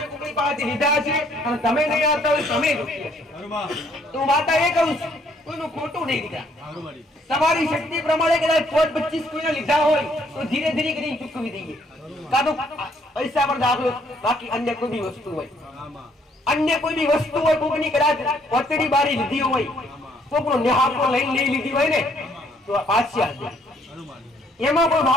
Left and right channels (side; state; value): both; normal; correlation 0.66